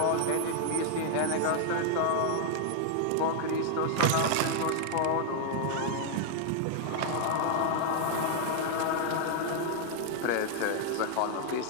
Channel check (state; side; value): different; both; correlation -0.01